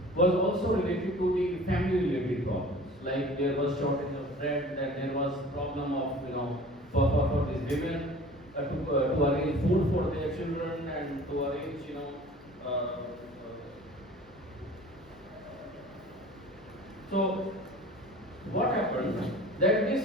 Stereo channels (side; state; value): both; normal; correlation 0.44